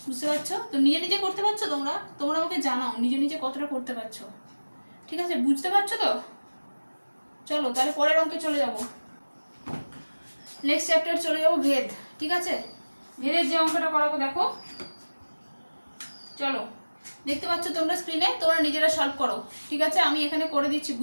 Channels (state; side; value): inverted; both; correlation -1.00